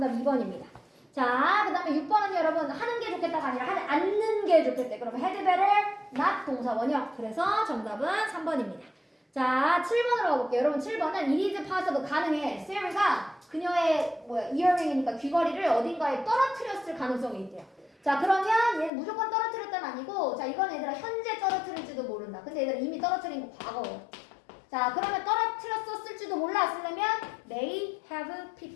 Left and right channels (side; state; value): right; drops out; at 18.9 s